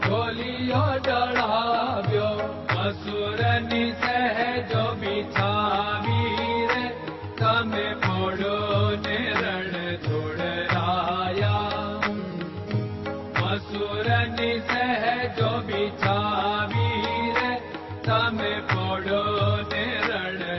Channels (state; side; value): identical; both; correlation 1.00